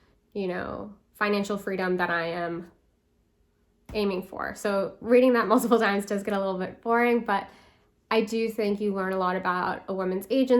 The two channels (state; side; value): identical; both; correlation 1.00